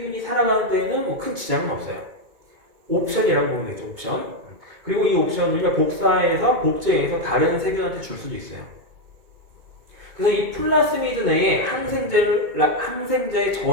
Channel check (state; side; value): late; left; 2.2 ms